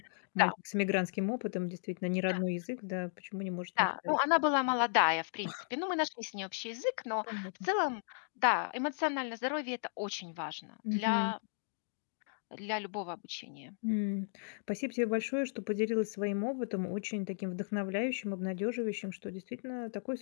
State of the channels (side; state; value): right; silent; digital silence